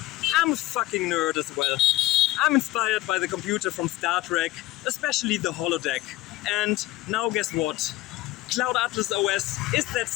I'm a fucking nerd as well. I'm inspired by the computer from Star Trek, especially the holodeck. And now guess what? Cloud Atlas OS is that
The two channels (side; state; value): right; quieter; 17.9 dB